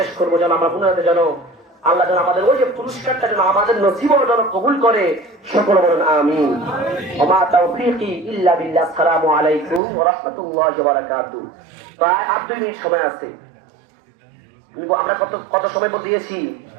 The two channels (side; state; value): left; drops out; at 9.8 s